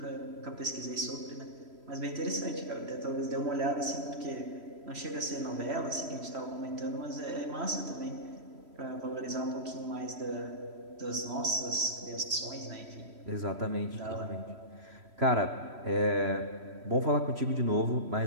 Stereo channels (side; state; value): left; late; 3.1 ms